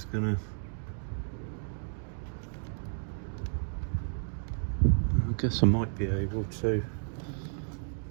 gonna. I guess I might be able to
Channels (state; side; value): silent; left; digital silence